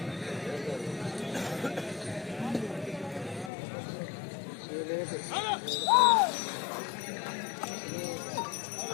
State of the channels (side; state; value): right; drops out; at 3.5 s